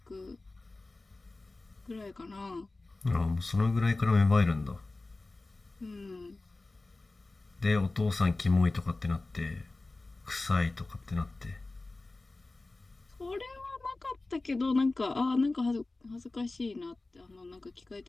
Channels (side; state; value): right; quieter; 3.2 dB